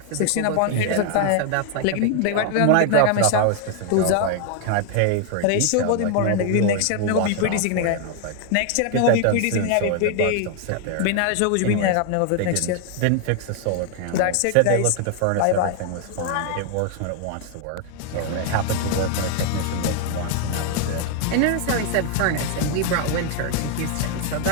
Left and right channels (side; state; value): both; different; correlation 0.00